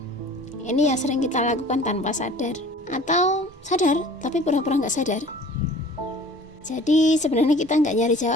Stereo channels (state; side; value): normal; both; correlation 0.47